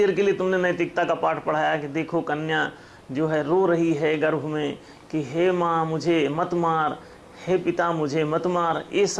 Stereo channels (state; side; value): identical; both; correlation 1.00